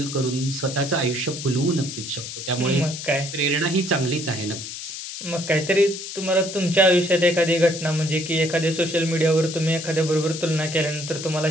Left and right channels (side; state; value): left; noise; hiss, 8 dB below the sound